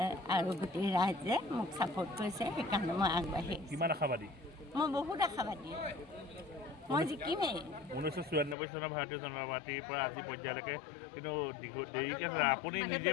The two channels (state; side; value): drops out; right; at 8.6 s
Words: আৰু গোটেই ৰাইজে মোক ছাপোৰ্ট কৰিছে। সেইকাৰণে মই আগবাঢ়ি আহিছোঁ। কিমান আশাবাদী? মই বহুত আশাবাদী, মই জিকিমেই। 1994 চনৰ ভাৰতীয় জনতা পাৰ্টীৰ পৰা আজি পৰ্যায়লৈকে কিন্তু দেৰিকৈ আপুনি নিজে